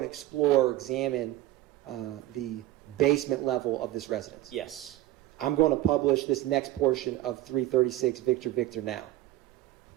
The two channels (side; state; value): left; quieter; 15.8 dB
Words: explore or examine the basement level of this residence? Yes. I'm going to publish this next portion of 336 Victor Victor now.